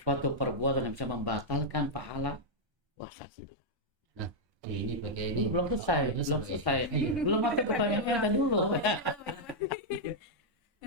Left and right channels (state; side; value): late; left; 1.3 ms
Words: perbuatan yang bisa membatalkan pahala puasa kita. Nah, ini begini. Belum selesai. Belum masuk ke pertanyaan yang dulu.